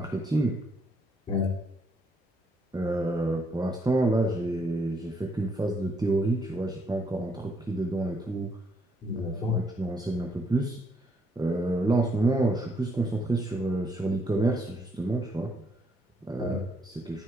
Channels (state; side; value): normal; both; correlation 0.72